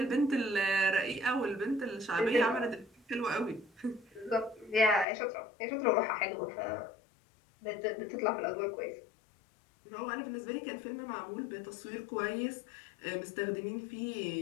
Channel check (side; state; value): right; drops out; at 5.1 s